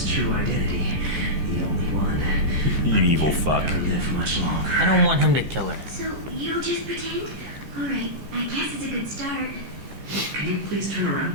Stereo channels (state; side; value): late; left; 14 ms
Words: true identity. The only one. You evil fuck. Never live much longer. I don't want him to kill her. So, you'll just pretend? Alright, I guess it's a good start. Can you please turn around?